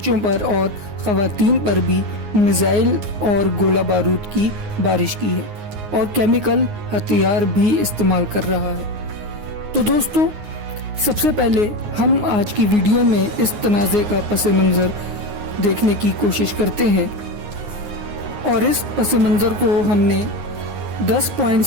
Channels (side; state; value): left; late; 9.6 ms